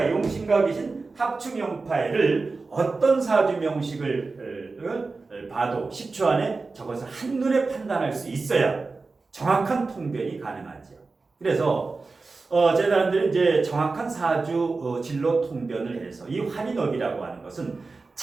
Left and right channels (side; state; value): left; quieter; 3.9 dB